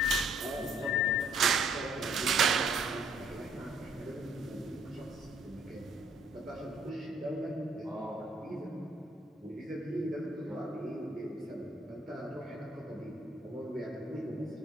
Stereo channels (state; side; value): normal; both; correlation 0.64